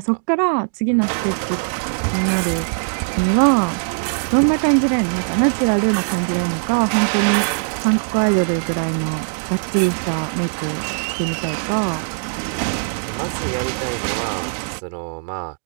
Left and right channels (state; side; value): silent; left; digital silence